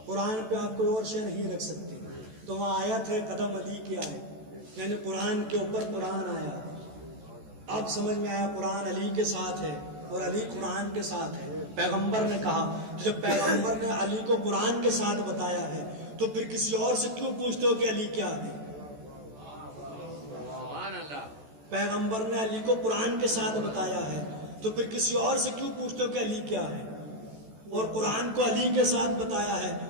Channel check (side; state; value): left; late; 14 ms